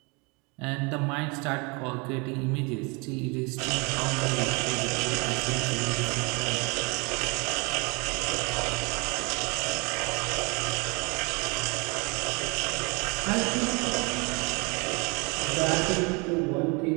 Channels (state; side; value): quieter; left; 30.1 dB